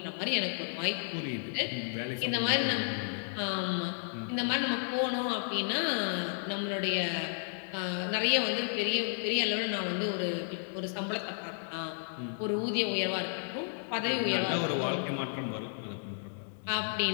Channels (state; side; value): silent; right; 56 dB below the other